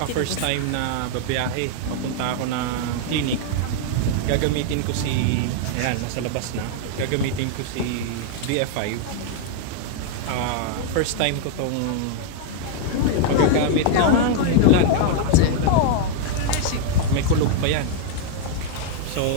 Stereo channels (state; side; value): different; both; correlation 0.00